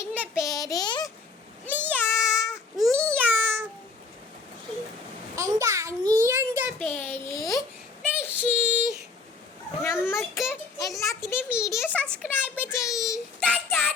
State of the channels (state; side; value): quieter; right; 4.4 dB